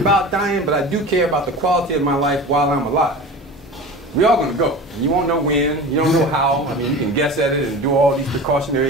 dying, but I do care about the quality of my life while I'm alive. We're all going to go. You won't know when. You don't know how. I mean, you can guess at it and do all these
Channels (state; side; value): normal; both; correlation 0.34